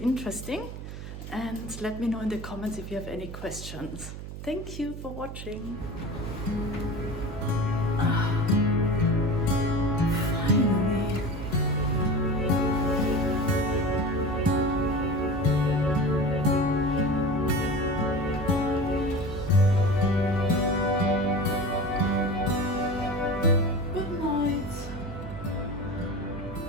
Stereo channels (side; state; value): right; noise; hum, 10 dB below the sound